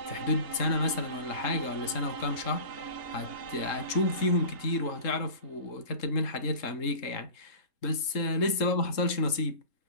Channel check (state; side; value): late; right; 3.7 ms